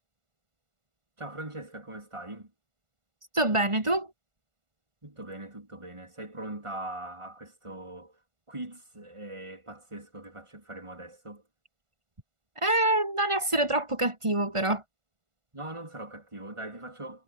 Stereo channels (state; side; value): late; left; 1.4 ms